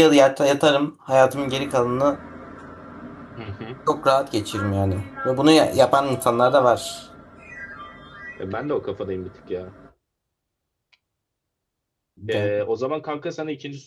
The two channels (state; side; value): identical; both; correlation 1.00